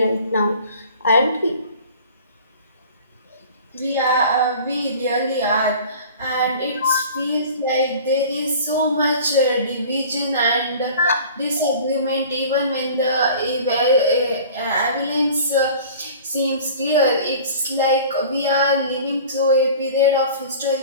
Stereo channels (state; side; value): inverted; both; correlation -0.43